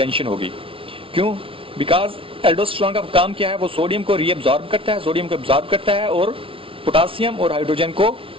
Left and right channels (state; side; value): late; left; 0.26 ms